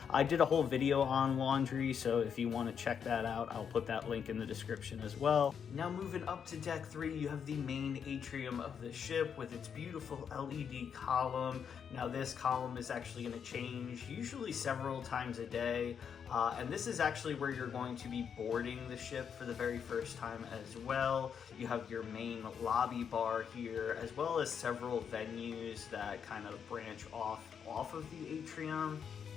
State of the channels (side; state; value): right; quieter; 7.3 dB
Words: I did a whole video on laundry, so if you want to check that out, I'll put that link in the description as well. Now, moving up to deck 3, you have the main atrium of the ship with its beautiful LED column. Now, this column is actually going to change usually several times a day, and this is actually where you're going to be boarding the ship for the very first time as well. You have your main lobby bar here, as well as several venues that kind of branch off of the atrium.